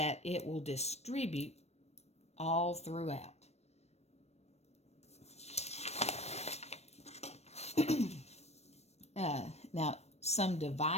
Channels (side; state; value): right; late; 0.31 ms